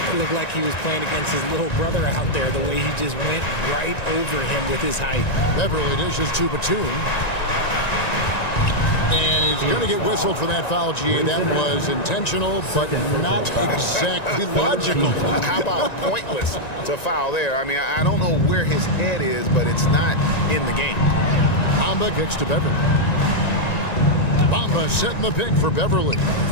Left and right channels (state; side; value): late; right; 1.9 ms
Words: It looked like he was playing against his little brother out there, the way he just went right over him with his height. Beverly dishes to Batum. And he's going to get whistled for that foul, G. That was intentional, but not exactly logical. How about pointless to foul there? I mean, I don't know where his head is, but it's not in the game. Bamba kicks to Beverly. Bamba setting the pick for Beverly.